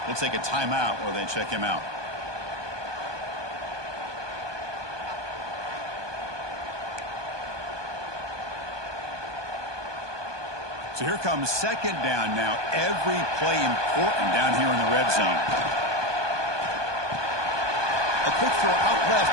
We'll take a timeout while they check him out. So here comes second down now. Every play important down here in the red zone. A quick throw out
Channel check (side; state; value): left; late; 1.2 ms